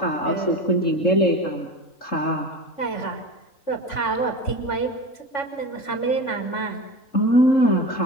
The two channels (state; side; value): late; right; 3.5 ms